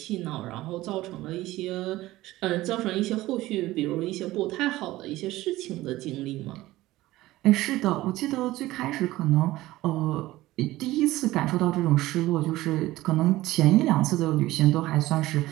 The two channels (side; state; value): left; quieter; 17.2 dB